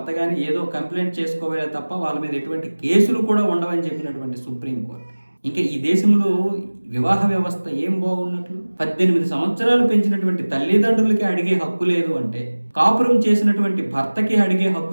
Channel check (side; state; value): both; inverted; correlation -1.00